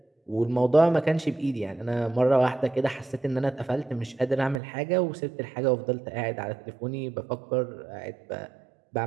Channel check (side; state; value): left; drops out; at 4.6 s